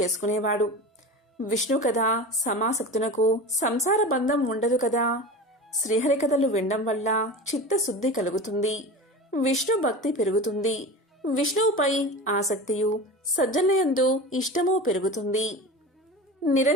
విష్ణు కథ సమాసక్తునకు సంసార బంధం ఉండదు కదా. శ్రీహరి కథలు వినడం వల్ల చిత్తశుద్ధి కలుగుతుంది, విష్ణు భక్తి పెరుగుతుంది, విష్ణువుపై ఆసక్తియు సజ్జనయందు ఇష్టము పెరుగుతుంది.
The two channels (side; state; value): both; normal; correlation 0.31